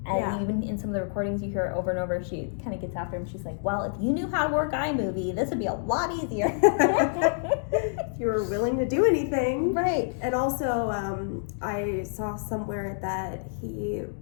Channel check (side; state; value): right; silent; digital silence